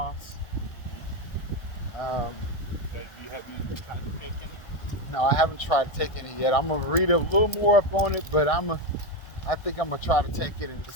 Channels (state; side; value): late; right; 1.6 ms